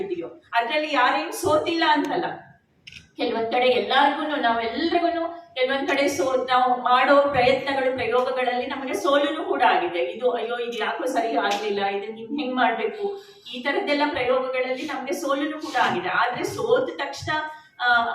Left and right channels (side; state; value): both; identical; correlation 1.00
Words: ಅದರಲ್ಲಿ ಯಾರೇನು ಸೋತಿಲ್ಲ ಅಂತಲ್ಲ. ಕೆಲವೊಂದ್ ಕಡೆ ನಾವೆಲ್ಲರಿಗೂ ಕೆಲವೊಂದ್ ಕಡೆ ನಾವು ಮಾಡೋ ಪ್ರಯೋಗಗಳಲ್ಲಿ ನಮಗೆ ಸೋಲುನು ಕೂಡ ಆಗಿದೆ. ಇದು ಯಾಕೋ ಸರಿ ಆಗ್ಲಿಲ್ಲ, ಇದನ್ನ ಹೆಂಗ್ ಮಾಡ್ಬೇಕು, ಈ ತರದ್ದೆಲ್ಲ ಪ್ರಯೋಗಗಳಲ್ಲಿ ನಮ್ಗೆ ಸೋಲುನು ಕೂಡ ಆಗಿದೆ. ಆದ್ರೆ ಸೋತ ತಕ್ಷಣ